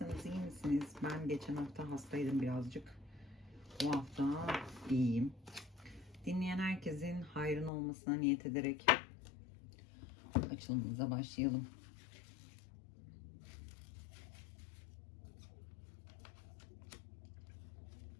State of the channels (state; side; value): drops out; right; at 7.7 s